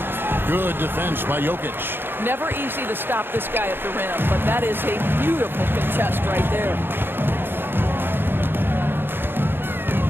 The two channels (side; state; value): left; late; 0.10 ms